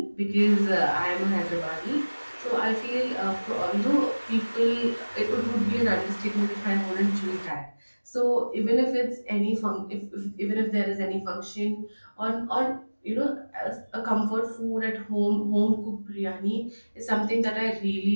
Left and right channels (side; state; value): both; inverted; correlation -1.00